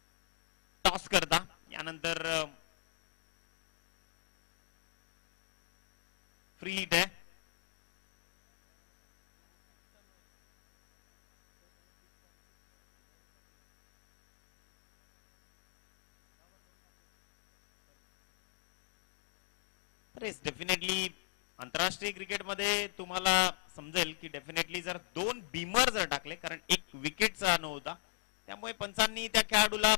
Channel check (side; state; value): right; silent; digital silence